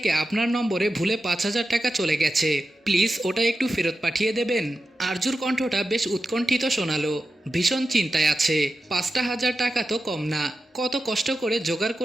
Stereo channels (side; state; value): both; normal; correlation 0.91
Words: আপনার নম্বরে ভুলে 5,000 টাকা চলে গেছে, প্লিজ ওটা একটু ফেরত পাঠিয়ে দেবেন। আরজুর কণ্ঠটা বেশ উৎকণ্ঠিত শোনালো, ভীষণ চিন্তায় আছে। 5,000 টাকা তো কম না, কত কষ্ট করে জোগাড়